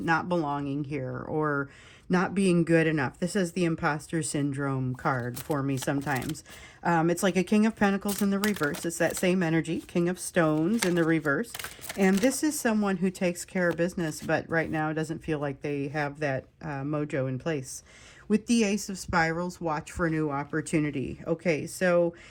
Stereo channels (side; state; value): both; identical; correlation 1.00